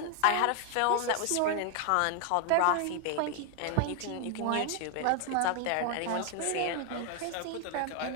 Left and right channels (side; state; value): both; different; correlation 0.01